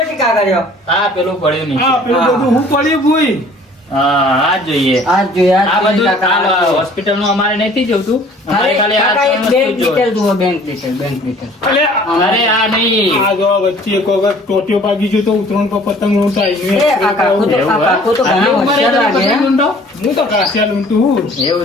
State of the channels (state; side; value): normal; both; correlation 0.52